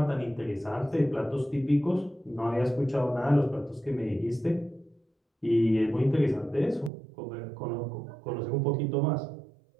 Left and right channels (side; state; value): left; drops out; at 6.9 s